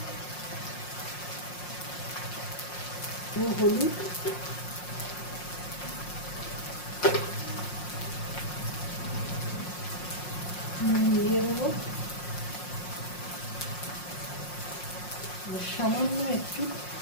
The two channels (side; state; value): right; late; 5.6 ms